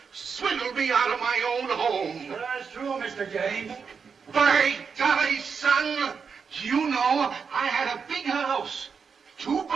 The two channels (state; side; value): quieter; left; 5.9 dB